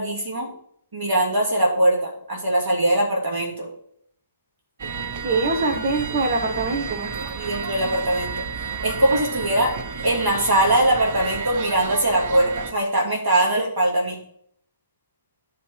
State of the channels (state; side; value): inverted; both; correlation -0.65